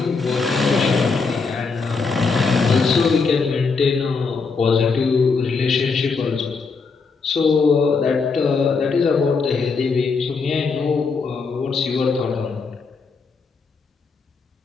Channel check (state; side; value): quieter; right; 4.7 dB